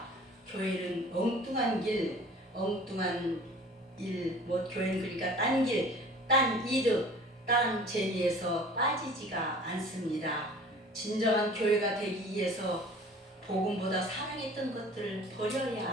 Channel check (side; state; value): both; normal; correlation 0.46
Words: 교회는 엉뚱한 길, 엉뚱한 일, 교회는 그러니까 딴 길, 딴 이득, 딴 재미에서 빠지지가 않습니다. 진정한 교회가 되기 위해서 복음보다 사랑했던 것들을 버려야